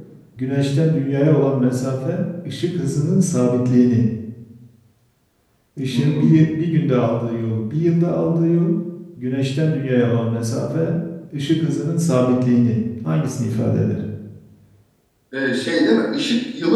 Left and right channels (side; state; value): both; identical; correlation 1.00